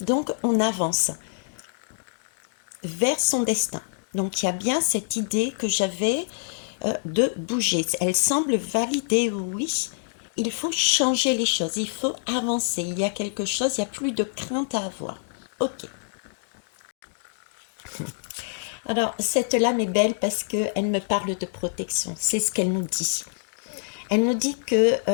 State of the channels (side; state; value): right; silent; digital silence